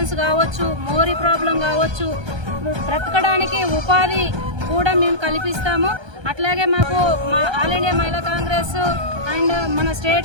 కావచ్చు, మోరీ ప్రాబ్లం కావచ్చు, బ్రతకడానికి ఉపాధి కూడా మేము కల్పిస్తాము. అట్లాగే మాకు మా ఆల్ ఇండియా మహిళా కాంగ్రెస్ అండ్ మన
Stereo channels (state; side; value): late; left; 1.3 ms